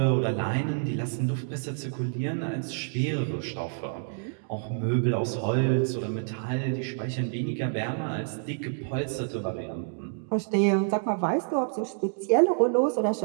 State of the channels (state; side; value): silent; left; digital silence